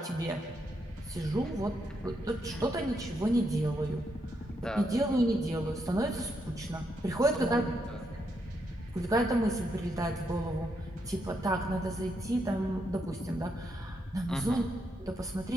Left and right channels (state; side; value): normal; both; correlation 0.79